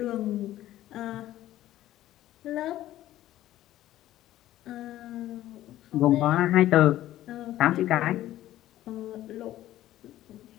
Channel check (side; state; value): right; quieter; 14.0 dB